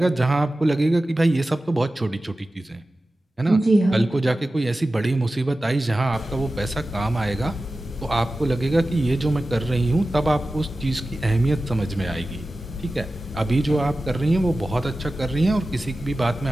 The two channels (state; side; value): normal; both; correlation 0.95